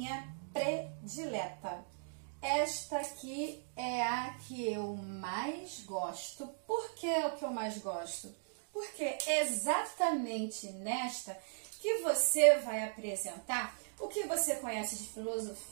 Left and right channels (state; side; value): silent; left; digital silence